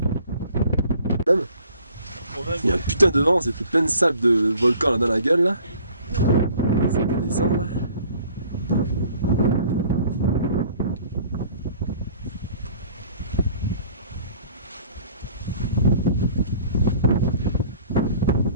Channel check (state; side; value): inverted; both; correlation -0.53